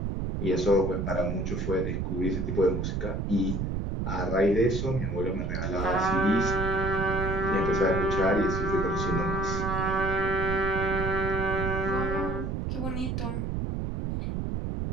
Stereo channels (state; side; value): noise; right; rumble, 2 dB below the sound